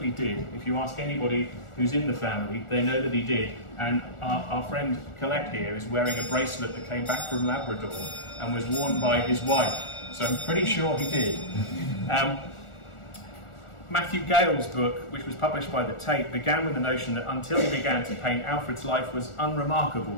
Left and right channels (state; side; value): late; right; 1.4 ms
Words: did. If you ask anybody who's in the family, they know that he did. And our friend Colette here is wearing a bracelet that came back from Labrador and was worn by his wife. So I'm pretty sure he did. Matthew Gale's book, which was published by the Tate, began with the notion that until he began to paint, Alfred's life was